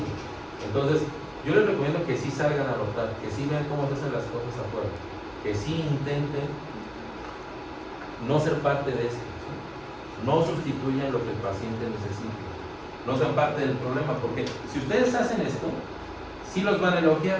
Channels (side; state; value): both; identical; correlation 1.00